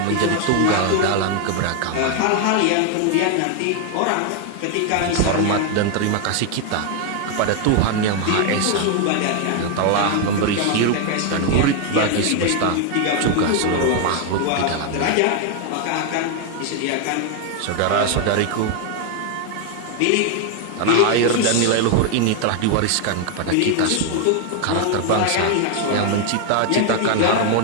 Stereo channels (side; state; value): both; different; correlation 0.00